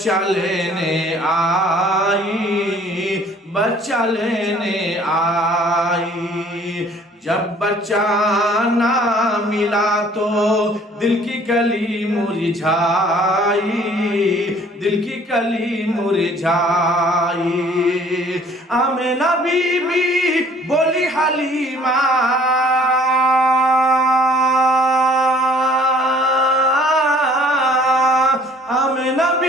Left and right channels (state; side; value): normal; both; correlation 0.55